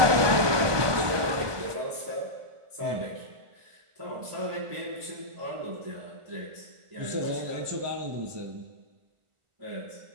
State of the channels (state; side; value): late; left; 1.2 ms